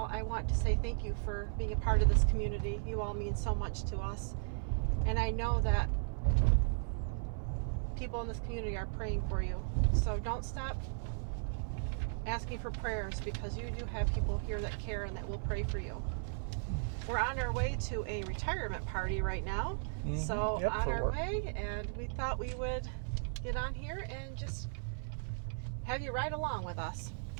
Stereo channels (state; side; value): silent; left; 54 dB below the other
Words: I want to say thank you for being a part of this community. You all mean so much to us. And I know that people in this community are praying for you. So don't stop asking for prayers because you do have people here that care and that will pray for you. We're on our way to a retirement party right now. So Yep, on for our work. way, and we thought we would get on here and just have you ride along with us.